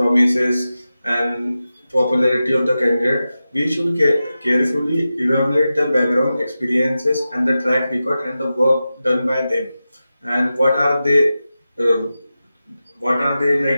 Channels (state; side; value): inverted; both; correlation -0.93